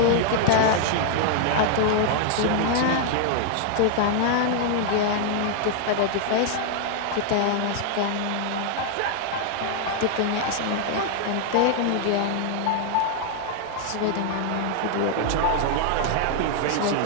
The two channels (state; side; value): different; both; correlation 0.00